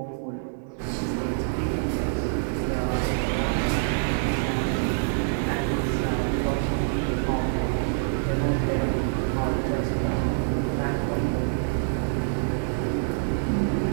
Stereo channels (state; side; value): silent; left; 61 dB below the other